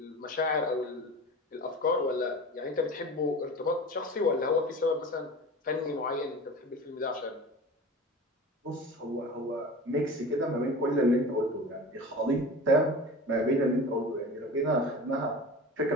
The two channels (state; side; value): normal; both; correlation 0.34